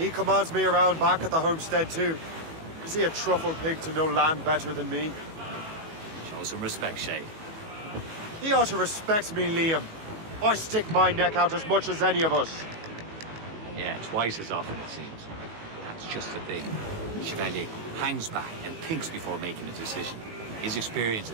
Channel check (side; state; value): left; late; 19 ms